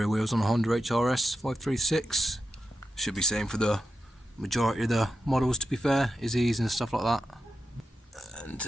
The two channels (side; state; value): both; normal; correlation 0.89